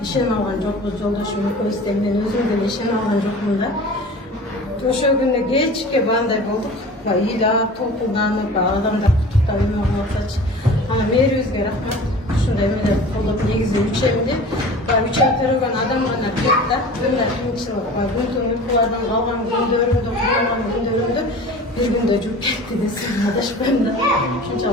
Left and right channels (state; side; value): normal; both; correlation 0.40